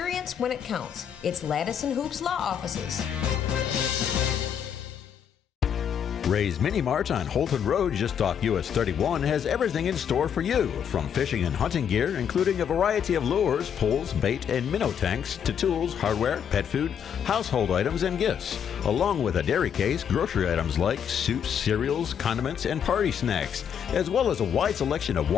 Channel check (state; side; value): quieter; right; 8.3 dB